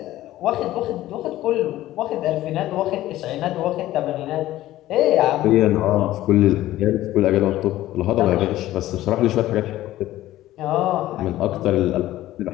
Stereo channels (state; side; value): quieter; right; 15.0 dB